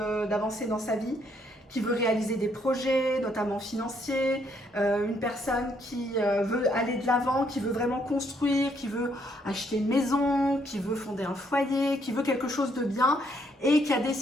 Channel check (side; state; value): both; normal; correlation 0.71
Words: d'avancer dans sa vie, qui veut réaliser des projets, notamment financiers, une personne qui veut aller de l'avant, qui veut vraiment construire, qui veut acheter une maison, qui veut fonder un foyer, qui veut quelque chose de bien et qui a